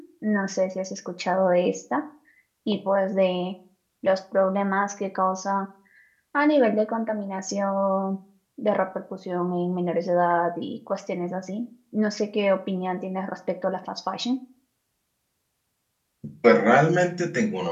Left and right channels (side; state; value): both; identical; correlation 1.00